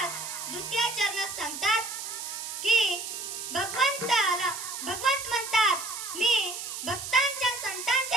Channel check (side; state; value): right; noise; hiss, 7 dB below the sound